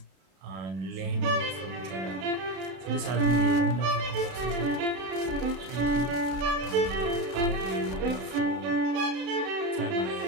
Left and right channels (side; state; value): left; late; 32 ms